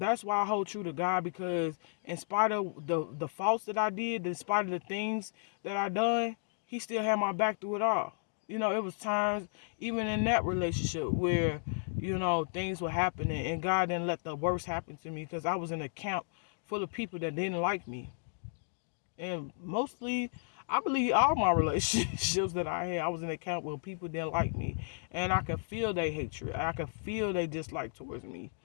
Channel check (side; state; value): right; silent; digital silence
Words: why I hold true to God, because in spite of the faults that I did, in spite of the things that I done, he still had my back through it all. It was times, even in that relationship, where, things were happening and God didn't let the worst happen to me, because I was in a camp full of people that didn't like me. And mostly, I believe all my relationships that I had, I was in a camp where people didn't like me. And I could feel their hatred. I could feel their dislike towards me.